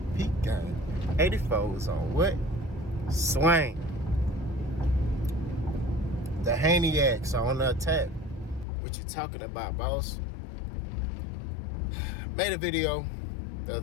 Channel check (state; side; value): drops out; right; at 8.7 s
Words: Peak Game. 84 is on what? Swing. The Haneyacks are on the attack. What you talking about, boss? Made a video the